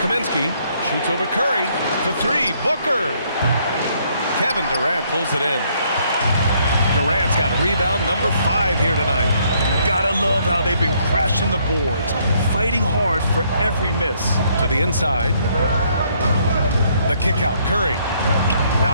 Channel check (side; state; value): both; inverted; correlation -0.68